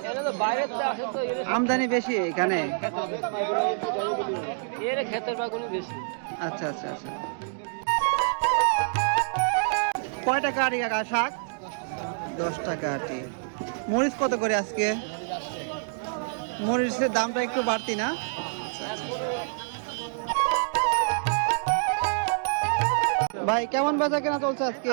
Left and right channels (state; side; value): silent; left; digital silence